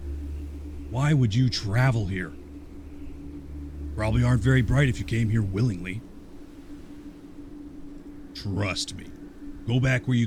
Why would you travel here? Probably aren't very bright if you came here willingly. Trust me. Go back where you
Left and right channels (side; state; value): both; identical; correlation 1.00